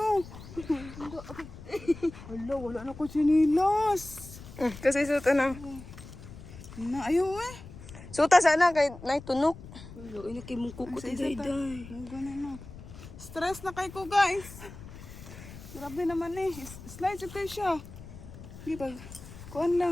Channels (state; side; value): noise; left; rumble, 15 dB below the sound